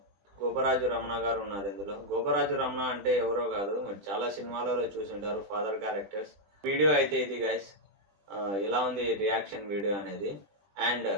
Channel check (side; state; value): left; late; 20 ms